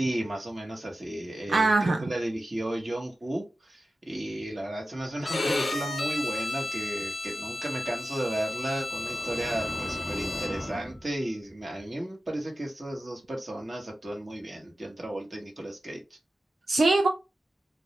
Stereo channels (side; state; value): both; normal; correlation 0.93